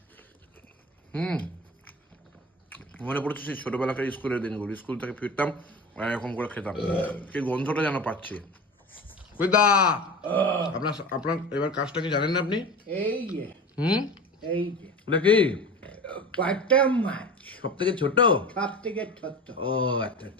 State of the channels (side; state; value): both; normal; correlation 0.32